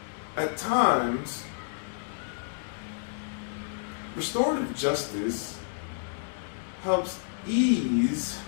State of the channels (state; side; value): silent; right; digital silence